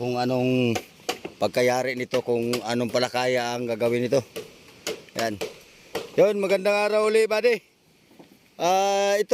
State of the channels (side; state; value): both; identical; correlation 1.00